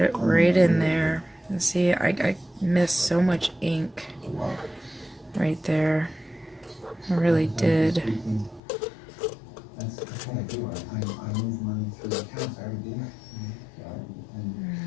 it right in there. And see, I missed so much ink right there. I really did.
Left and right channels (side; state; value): right; drops out; at 8.6 s